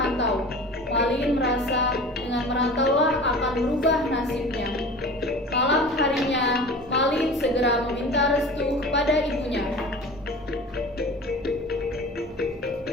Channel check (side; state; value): both; normal; correlation 0.38